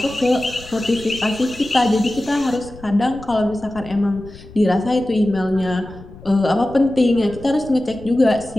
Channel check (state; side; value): noise; left; rumble, 18 dB below the sound